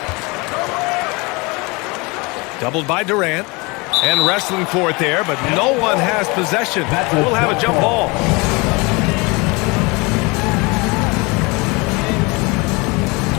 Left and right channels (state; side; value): quieter; right; 26.7 dB